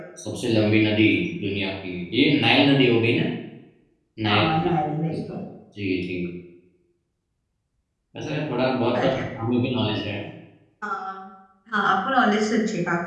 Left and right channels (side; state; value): both; identical; correlation 1.00